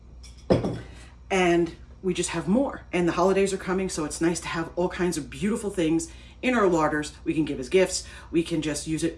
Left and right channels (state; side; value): identical; both; correlation 1.00